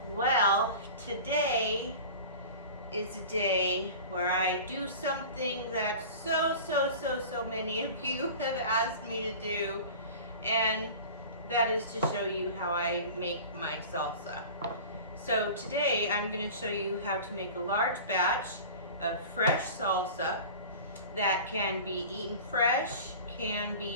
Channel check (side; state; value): both; inverted; correlation -0.37